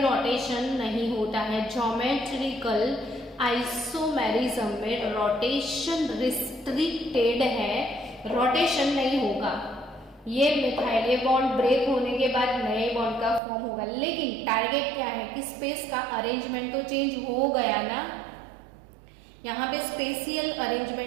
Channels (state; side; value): drops out; left; at 13.4 s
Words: नहीं होता है। ज्योमेट्रिकल आइसोमेरिज्म में रोटेशन रिस्ट्रिक्टेड है, रोटेशन नहीं होगा। ये मिथाइल, ये बॉन्ड ब्रेक होने के बाद नए बॉन्ड का फॉर्म होगा, लेकिन टारगेट क्या है कि स्पेस का अरेंजमेंट तो चेंज हो गया ना, यहाँ पे स्पेशियल